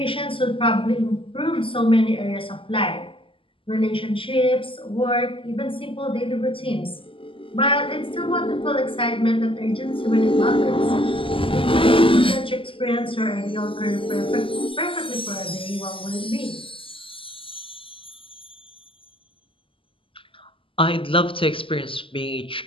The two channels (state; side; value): late; right; 0.25 ms